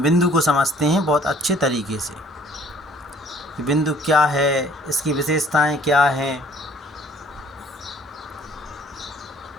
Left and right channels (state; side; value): normal; both; correlation 0.56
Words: बिंदु को समझते हैं बहुत अच्छे तरीके से कि बिंदु क्या है, इसकी विशेषताएं क्या हैं।